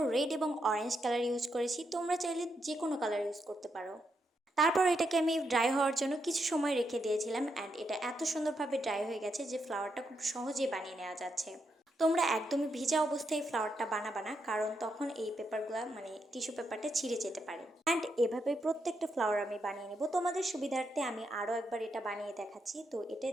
রেড এবং অরেঞ্জ কালার ইউজ করেছি, তোমরা চাইলে যে কোনো কালার ইউজ করতে পারো। তারপর এটাকে আমি ড্রাই হওয়ার জন্য কিছু সময় রেখে দিয়েছিলাম অ্যান্ড এটা এত সুন্দরভাবে ড্রাই হয়ে গেছে যে ফ্লাওয়ারটা খুব সহজেই বানিয়ে নেওয়া যাচ্ছে। তোমরা একদমই ভিজা অবস্থায় ফ্লাওয়ারটা বানাবা না, কারণ তখন এই পেপারগুলো মানে টিস্যু পেপারটা ছিঁড়ে যেতে পারে। অ্যান্ড এভাবে প্রত্যেকটা ফ্লাওয়ার আমি বানিয়ে নেব। তোমাদের সুবিধার্থে আমি আরও একবার এটা বানিয়ে দেখাচ্ছি। তো এটা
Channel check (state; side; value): normal; both; correlation 0.81